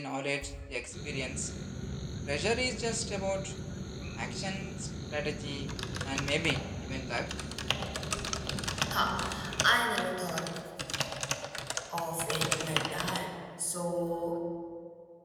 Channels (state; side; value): identical; both; correlation 1.00